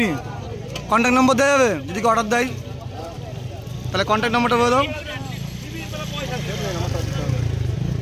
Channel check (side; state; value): both; identical; correlation 1.00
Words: কন্ট্যাক্ট নম্বর দেওয়া যাবে যদি অর্ডার দেয়, তাহলে কন্ট্যাক্ট নম্বরটা বলে দাও।